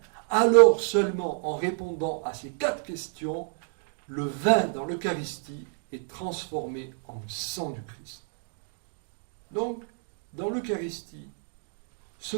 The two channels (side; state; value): left; silent; 59 dB below the other